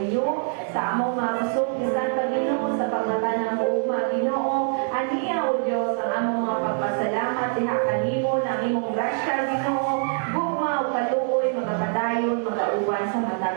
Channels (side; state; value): left; silent; 62 dB below the other